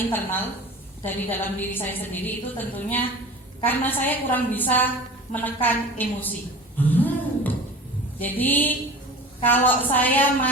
dari dalam diri saya sendiri, itu tentunya karena saya kurang bisa menekan emosi. Jadi kalau saya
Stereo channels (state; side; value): normal; both; correlation 0.38